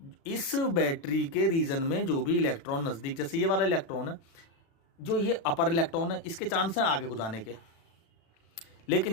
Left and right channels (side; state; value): right; late; 36 ms